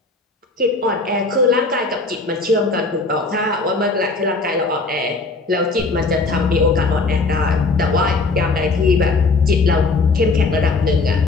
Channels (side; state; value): right; quieter; 3.7 dB